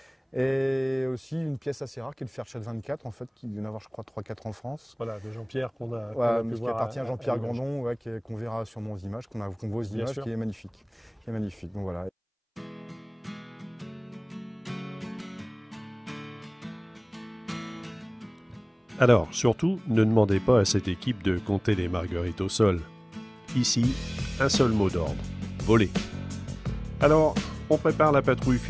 Et aussi une pièce assez rare qui est le Fairchild 24, en fait, qui vient d'avoir, je crois, 3-4 en France. Voilà, de Jean-Pierre qu'on a pu qui voir appartient à Jean-Pierre Grandon, qu'on verra sur nos images, qu'on voit aux images, qui est magnifique. Donc voilà. Alors, surtout, ne demandez pas à cette équipe de compter les marguerites au sol. Ici, un seul mot d'ordre, voler. Alors, on prépare la patrouille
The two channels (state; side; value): identical; both; correlation 1.00